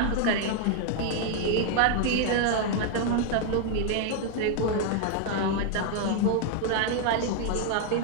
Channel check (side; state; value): both; different; correlation 0.00